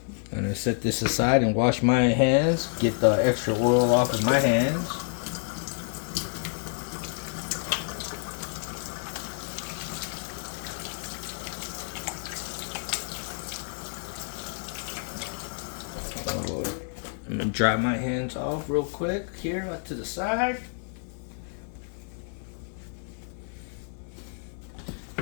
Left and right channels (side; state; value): right; silent; 59 dB below the other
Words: I'm gonna set this aside and wash my hands. Get the extra oil off of my hands. I'm gonna dry my hands off real quick here to the side.